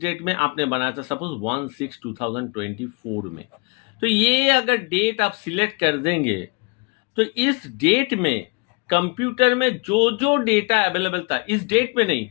डेट में, आपने बनाया था सपोज 1/6/2024 में। तो ये अगर डेट आप सिलेक्ट कर देंगे तो इस डेट में कंप्यूटर में जो जो डेटा अवेलेबल था, इस डेट में नहीं,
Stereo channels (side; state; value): right; quieter; 30.5 dB